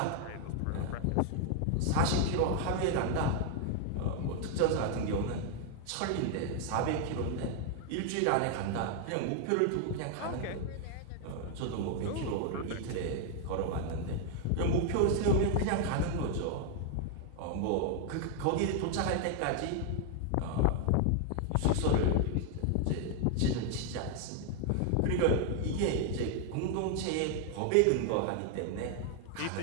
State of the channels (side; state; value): both; different; correlation 0.00